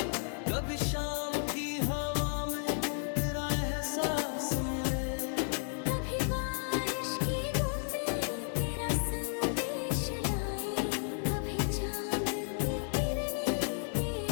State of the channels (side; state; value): right; silent; 56 dB below the other